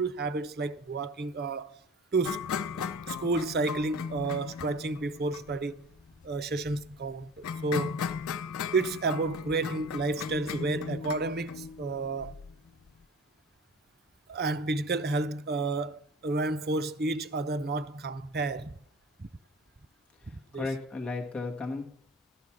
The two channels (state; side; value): normal; both; correlation 0.39